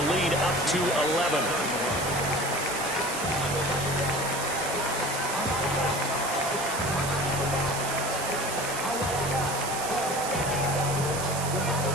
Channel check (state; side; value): noise; right; hiss, 6 dB below the sound